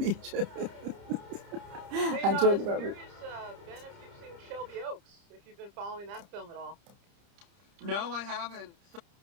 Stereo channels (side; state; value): left; late; 30 ms